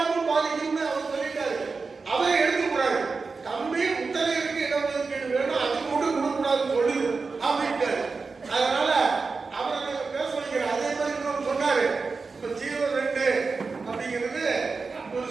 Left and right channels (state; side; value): quieter; left; 4.4 dB